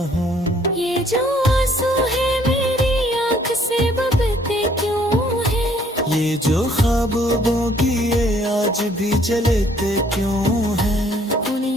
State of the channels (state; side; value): normal; both; correlation 0.62